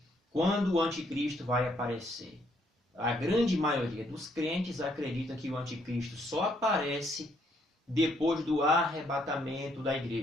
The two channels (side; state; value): both; normal; correlation 0.70